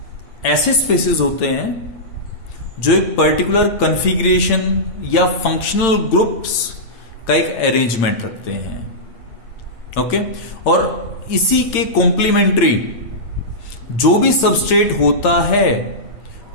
ऐसे स्पेसेस होते हैं जो एक पर्टिकुलर कॉन्फ़िगरेशन या फंक्शनल ग्रुप्स का एक अरेंजमेंट रखते हैं। ओके, और इसी के कॉम्प्लीमेंट्री जो भी सबस्ट्रेट होता है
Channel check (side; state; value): right; late; 8.8 ms